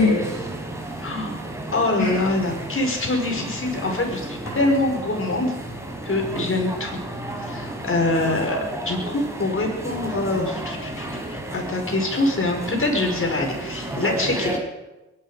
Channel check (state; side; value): normal; both; correlation 0.32